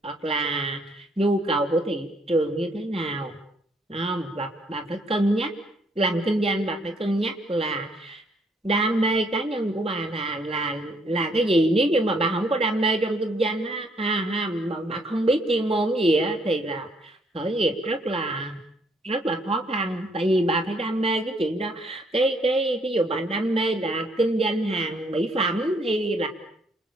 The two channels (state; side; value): normal; both; correlation 0.68